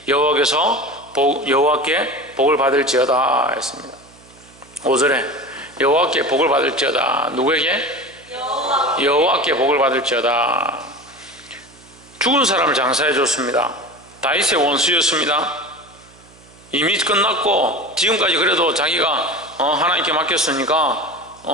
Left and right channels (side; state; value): right; noise; hum, 26 dB below the sound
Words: 여호와께 복을 받을지어다 했습니다. 5절에 여호와께 복을 받을지어다. 누구에게? 여호와께 복을 받을지어다. 죽은 사람을 장사해 줬습니다. 다윗의 원수였습니다. 이미 끝났고 지금까지 그래도 자기가 하나님께 맡겼으니까